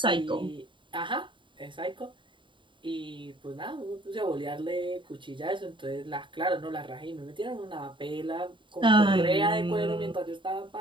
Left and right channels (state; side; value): late; left; 0.23 ms